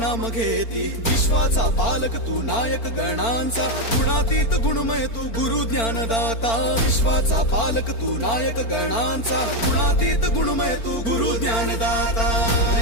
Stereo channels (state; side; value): late; right; 4.4 ms